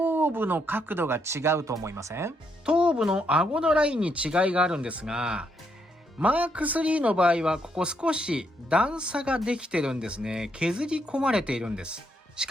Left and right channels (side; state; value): both; normal; correlation 0.76